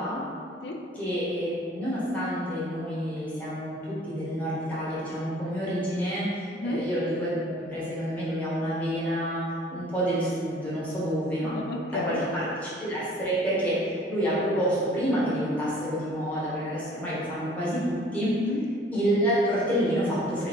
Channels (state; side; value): normal; both; correlation 0.52